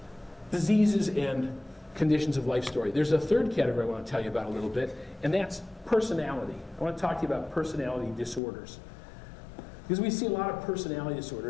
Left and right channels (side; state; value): right; drops out; at 8.4 s